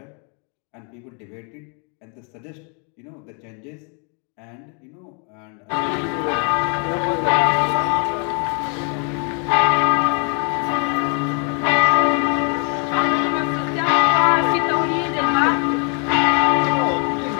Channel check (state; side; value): quieter; right; 38.6 dB